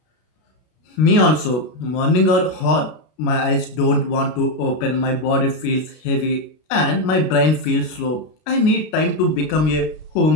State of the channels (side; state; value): right; late; 33 ms